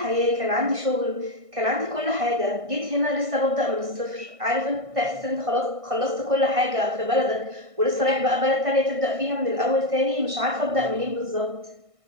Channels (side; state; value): left; late; 1.6 ms